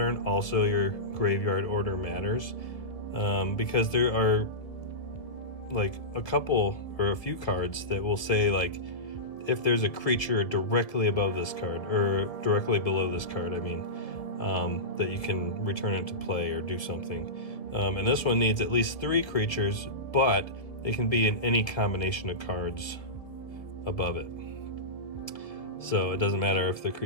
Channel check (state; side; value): late; right; 1.6 ms